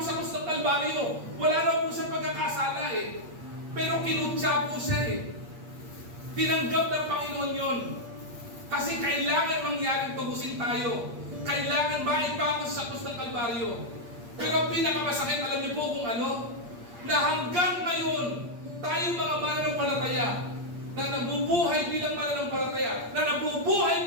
sa krus ng Kalbaryo, wala na po siya pagkakasala eh. Pero kinutya po siya eh. Tinanggap ng Panginoon yon. Kasi kailangan mangyaring tubusin tayo. Kailangan maipako sa krus ng Kalbaryo. Pero ang pinakamasakit, alam niyo po kung ano? Na hanggang ngayon, tayo mga mananampalataya na nabubuhay bilang mananampalataya, na nabubuhay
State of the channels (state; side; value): late; left; 8.5 ms